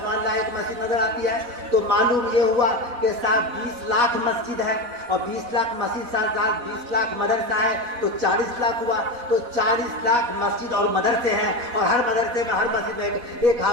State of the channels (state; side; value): late; left; 4.1 ms